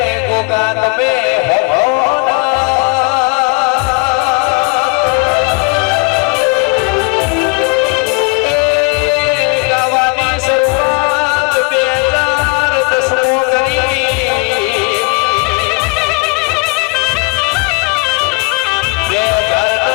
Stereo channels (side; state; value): right; quieter; 30.8 dB